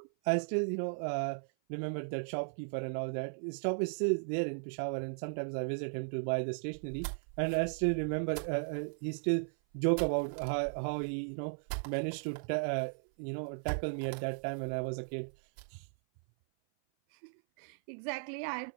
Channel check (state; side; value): silent; left; 54 dB below the other